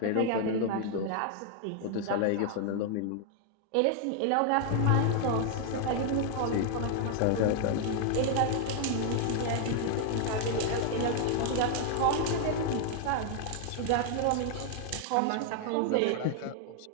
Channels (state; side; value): different; both; correlation 0.00